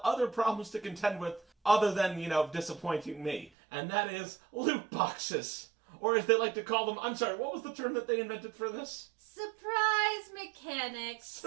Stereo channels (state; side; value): drops out; left; at 3.5 s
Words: other problems to contend with other than, disappointing me. And that is loot boxes. Or as they like to call them, I'm sorry, what was the term that they invented for this? Surprise mechanics.